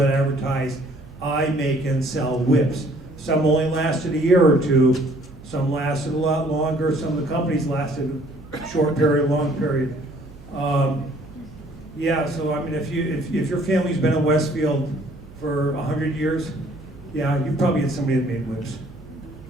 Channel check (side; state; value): right; noise; hum, 20 dB below the sound